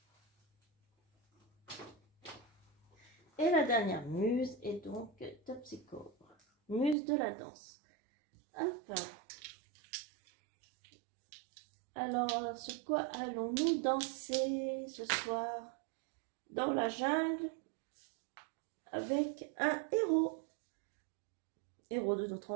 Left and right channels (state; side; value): drops out; left; at 7.0 s